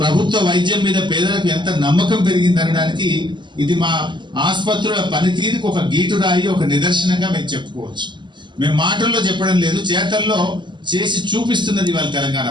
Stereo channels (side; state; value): left; late; 0.22 ms